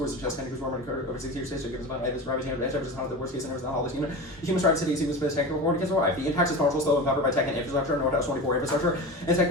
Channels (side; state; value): both; normal; correlation 0.29